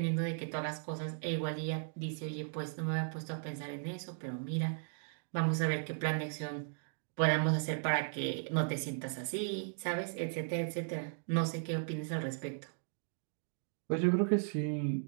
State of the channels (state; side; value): silent; left; digital silence